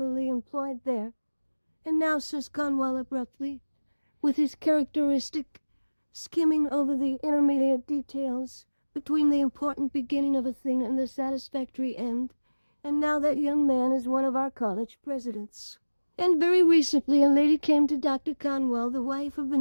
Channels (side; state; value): both; inverted; correlation -1.00